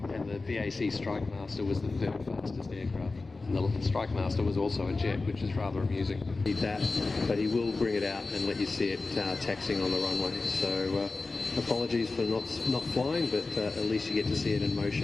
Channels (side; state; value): right; quieter; 3.6 dB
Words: the BAC Strikemaster was the third fastest aircraft. And the Strikemaster was also a jet, which is rather amusing. Need that, but he will bring it out and let you see it taxiing on the runway. So apologies for not flying, but at least you get to see it in